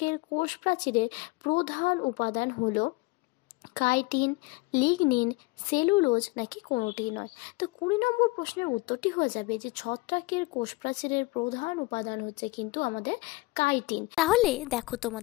কোষ প্রাচীরের প্রধান উপাদান হলো কাইটিন, লিগনিন, সেলুলোজ নাকি কোনোটিই নয়? তো 20 নম্বর প্রশ্নের উত্তরটি হয়ে যাবে যে ছত্রাকের কোষপ্রাচীরের প্রধান উপাদান হচ্ছে কিন্তু আমাদের কাইটিন। তাহলে দেখো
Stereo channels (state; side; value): quieter; right; 23.4 dB